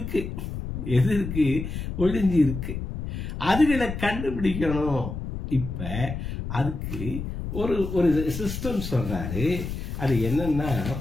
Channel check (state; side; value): noise; left; rumble, 6 dB below the sound